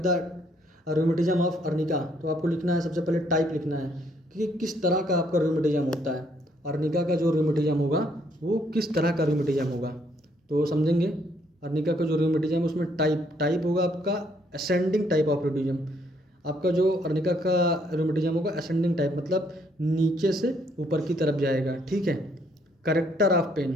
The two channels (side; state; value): both; normal; correlation 0.69